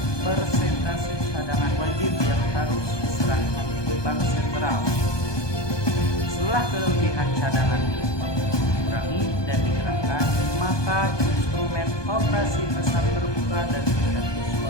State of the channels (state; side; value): late; right; 1.2 ms